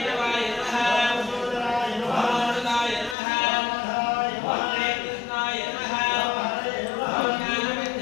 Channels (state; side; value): drops out; right; at 3.2 s